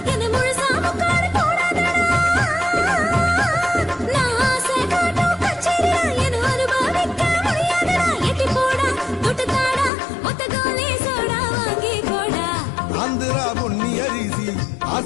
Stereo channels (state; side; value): drops out; right; at 9.9 s